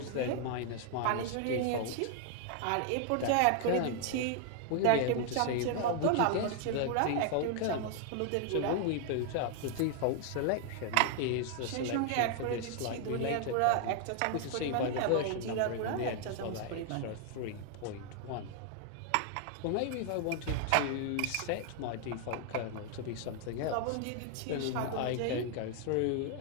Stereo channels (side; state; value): both; different; correlation 0.00